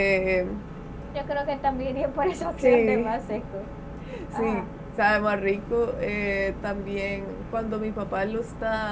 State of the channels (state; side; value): identical; both; correlation 1.00